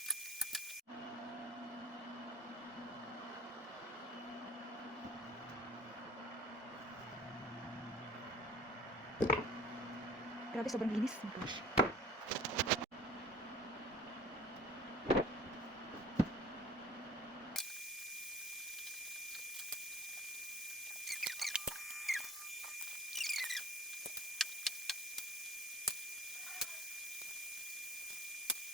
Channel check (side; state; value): both; normal; correlation 0.46